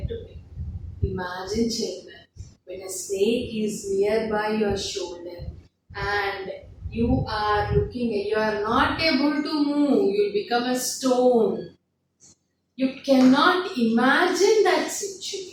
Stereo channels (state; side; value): identical; both; correlation 1.00